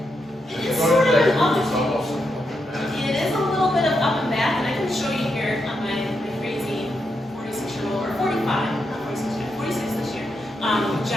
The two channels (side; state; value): both; normal; correlation 0.83